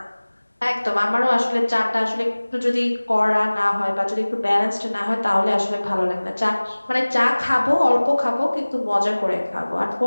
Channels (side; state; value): both; inverted; correlation -1.00